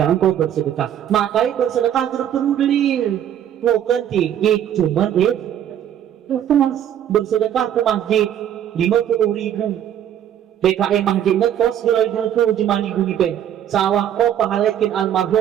engkau bersedekah, makanya bersedekah perlu dalil. Bukan tinggi, cuma bersedekah ke masjid 50.000. PKM masjid ngekos 2.000 jemani guni pe. Sawah kau pahalakin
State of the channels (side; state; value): left; quieter; 10.3 dB